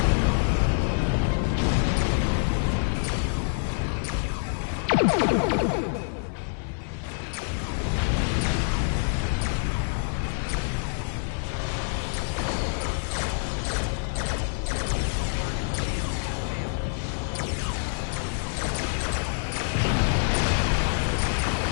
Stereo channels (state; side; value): silent; right; digital silence